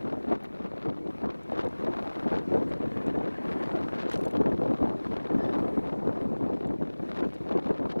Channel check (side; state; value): both; inverted; correlation -1.00